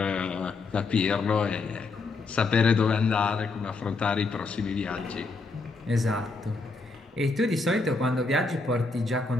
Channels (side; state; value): right; quieter; 3.8 dB